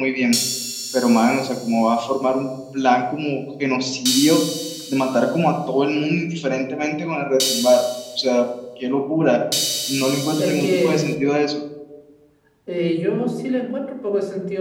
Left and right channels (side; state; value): both; identical; correlation 1.00